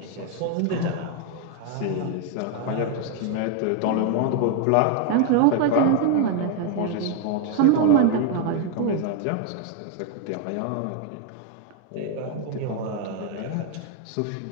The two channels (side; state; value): both; different; correlation 0.01